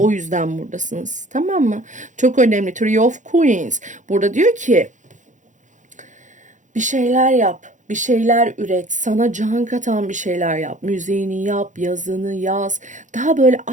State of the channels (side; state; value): left; late; 0.36 ms